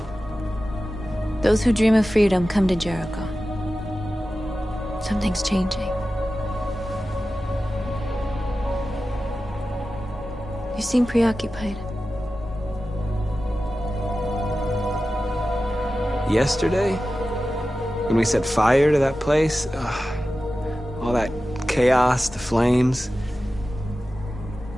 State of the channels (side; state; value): both; normal; correlation 0.94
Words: Those who dream of freedom come to Jericho. Something's changing. You seem preoccupied. Yesterday, when we set fire to that place, all that chaos, the flames.